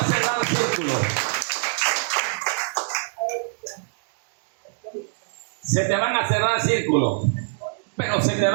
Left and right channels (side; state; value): left; silent; 63 dB below the other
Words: cerrar círculos. Se te van a cerrar círculos. pero se te